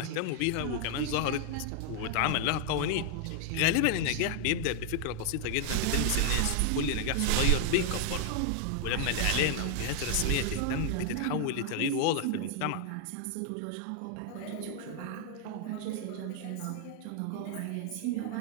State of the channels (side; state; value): both; different; correlation 0.00